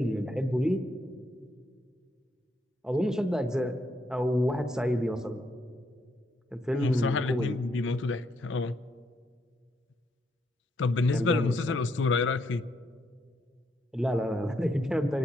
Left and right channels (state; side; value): normal; both; correlation 0.76